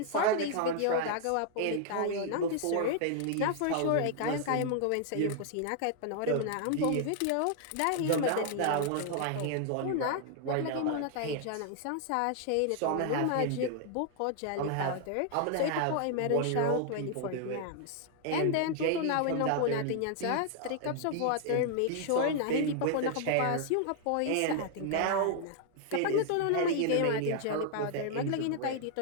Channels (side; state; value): both; different; correlation 0.00